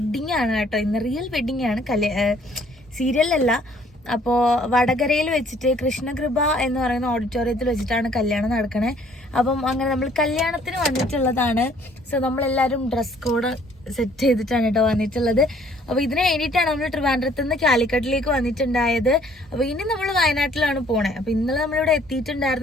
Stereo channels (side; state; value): both; normal; correlation 0.60